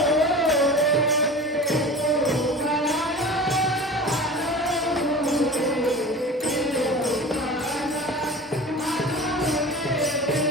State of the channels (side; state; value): both; normal; correlation 0.35